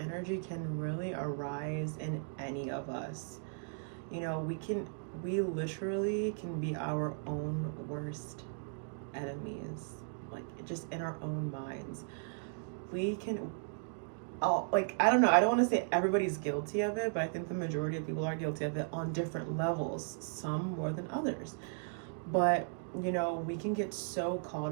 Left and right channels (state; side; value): silent; left; digital silence